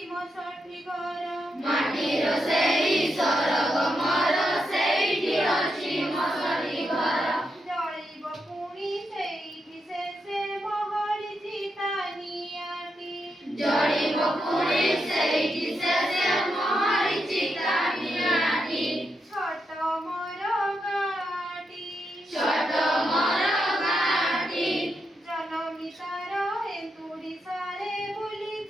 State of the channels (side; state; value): both; normal; correlation 0.83